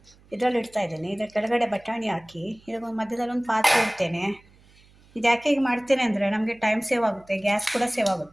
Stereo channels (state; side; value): noise; right; hum, 28 dB below the sound